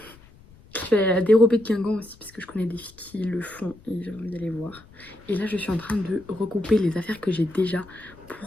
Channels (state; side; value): noise; left; rumble, 25 dB below the sound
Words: Je vais à la dérobée de Guingamp aussi parce que je connais des filles qui le font et j'ai envie d'aller voir. Et là, je suis en train de regrouper les affaires que j'ai déjà